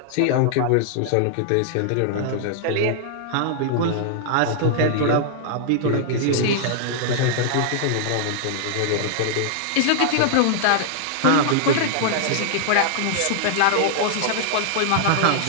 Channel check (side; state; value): both; different; correlation -0.01